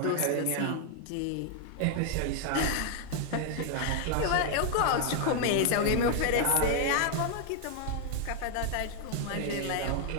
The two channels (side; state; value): both; different; correlation 0.00